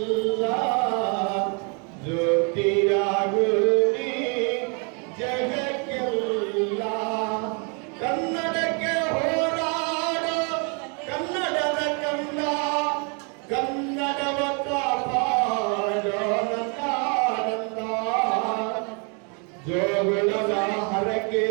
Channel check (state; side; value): quieter; left; 36.3 dB